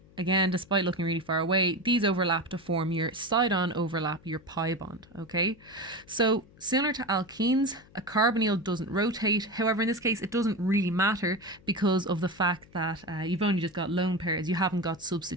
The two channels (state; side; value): noise; left; hum, 25 dB below the sound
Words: again, despite looking really far away, these overlap to form your side-on overlap, your pi bond. Okay, so similar to alkenes, a carbonyl doesn't rotate. However, in this case, it doesn't really matter because of the fact that you've only just got lone pairs. You haven't got